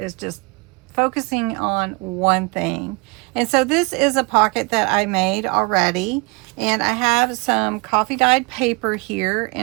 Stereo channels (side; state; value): left; quieter; 28.8 dB